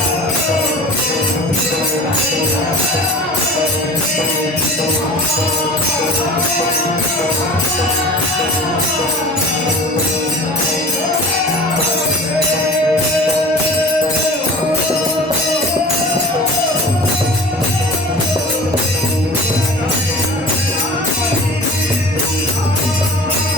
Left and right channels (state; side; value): normal; both; correlation 0.40